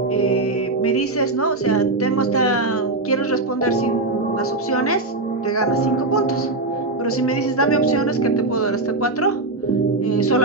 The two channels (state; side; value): quieter; left; 3.1 dB